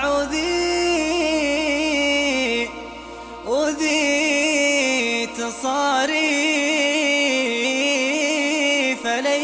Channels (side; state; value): both; identical; correlation 1.00